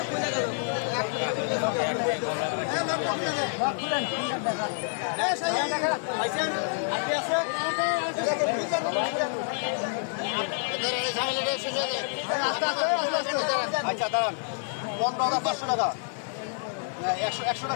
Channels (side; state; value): right; silent; 59 dB below the other